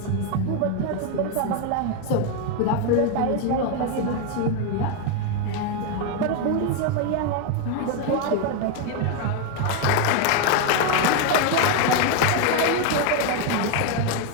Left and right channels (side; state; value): both; different; correlation 0.01